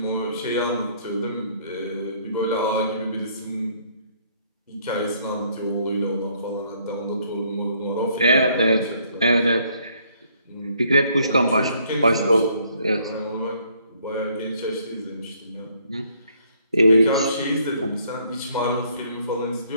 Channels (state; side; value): inverted; both; correlation -0.66